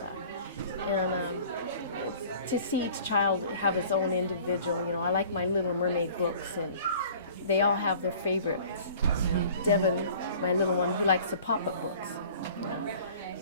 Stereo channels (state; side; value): inverted; both; correlation -0.48